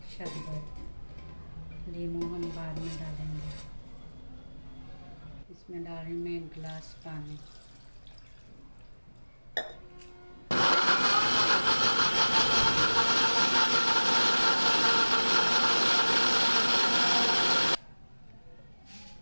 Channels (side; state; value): both; inverted; correlation -1.00